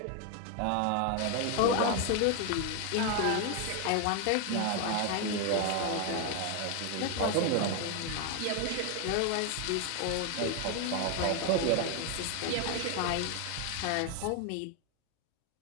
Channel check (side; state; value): both; different; correlation 0.01